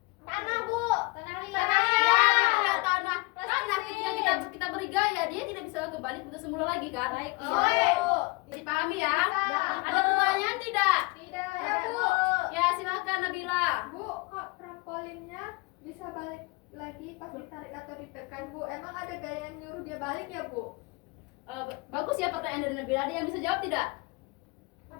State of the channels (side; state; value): right; quieter; 25.4 dB